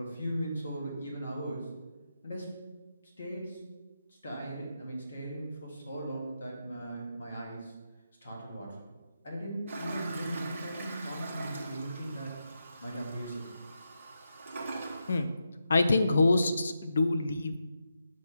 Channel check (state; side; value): inverted; both; correlation -0.86